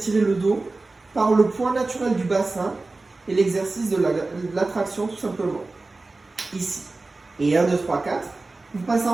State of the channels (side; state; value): left; quieter; 3.4 dB